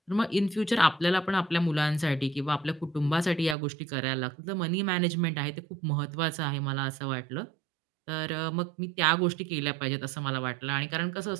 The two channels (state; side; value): drops out; left; at 3.6 s